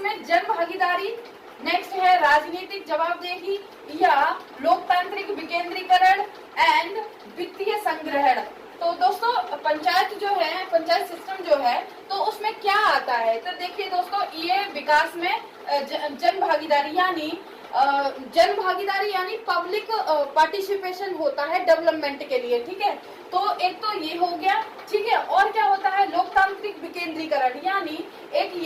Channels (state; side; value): identical; both; correlation 1.00